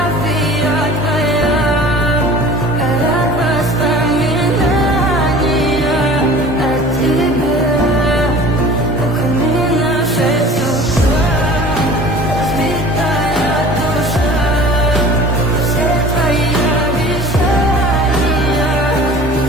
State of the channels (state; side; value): normal; both; correlation 0.44